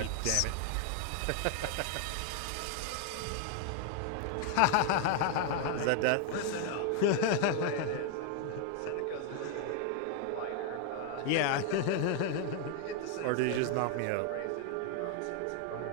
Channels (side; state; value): both; different; correlation 0.00